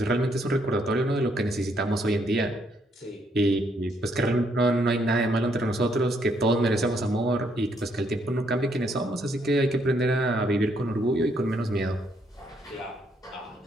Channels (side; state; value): both; normal; correlation 0.72